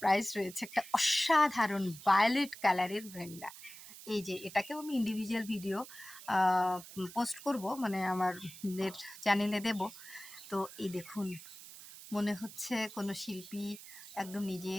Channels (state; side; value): noise; right; hiss, 15 dB below the sound